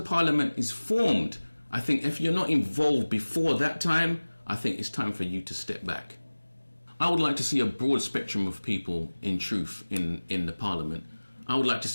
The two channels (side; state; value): both; inverted; correlation -1.00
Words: is formed, I think if you're not involved before that time, I think it's time for you to step back. I would like to see a broad spectrum of people in truth in the Parliament. I would like to